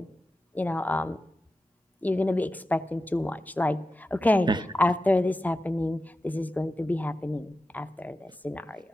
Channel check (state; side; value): normal; both; correlation 0.92